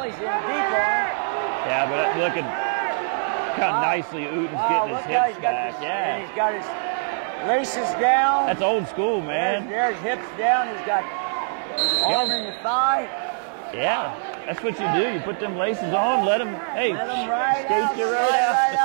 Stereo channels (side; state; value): left; silent; digital silence